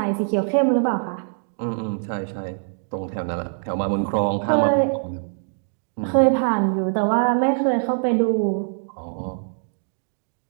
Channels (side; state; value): left; silent; digital silence